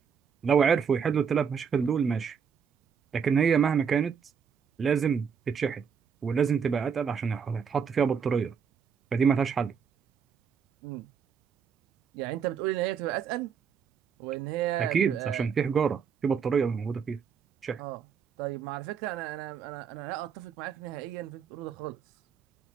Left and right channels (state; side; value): quieter; left; 6.8 dB